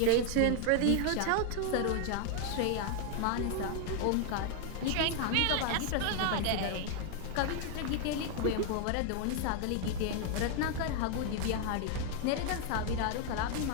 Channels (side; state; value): both; different; correlation 0.00